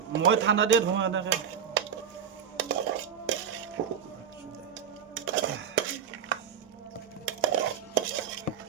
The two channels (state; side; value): quieter; left; 8.0 dB